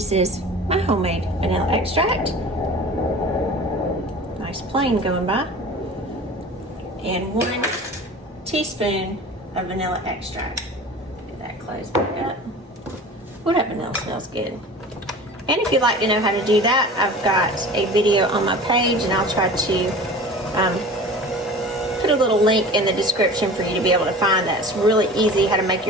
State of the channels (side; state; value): both; normal; correlation 0.38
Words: is my homemade vanilla extract. Nice plain going by. And 1 teaspoon of vanilla extract. That close back up. Ooh, that vanilla smells good. And if you'd like to know how to do that, I've got a video on my page, and I'll try to put a little link in the description for you to be able to find that. It's really easy how to make